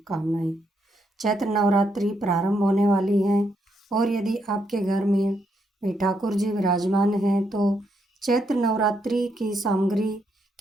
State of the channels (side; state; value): both; normal; correlation 0.77